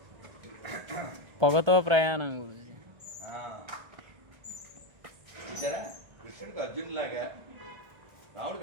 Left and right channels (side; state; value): left; late; 1.3 ms